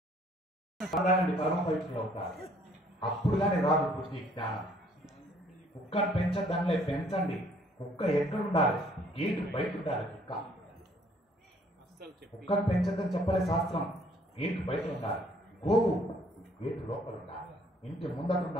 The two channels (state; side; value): normal; both; correlation 0.61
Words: తాగండి, పరమ పవిత్రులు అవుతారు. అప్పుడు కానీ రాదు బుద్ధి జ్ఞానం. కుక్కను పెంచద్దానిలే, పెంచండి. కుక్క ఎక్కడ ఉండాలి? గేటు బయట ఉండాలి. కుక్కను పెంచద్దని చెప్పలే శాస్త్రం, గేటు బయట ఉండాలి. గోవు గేటు లోపల ఉండాలి, ఇంటి ముందట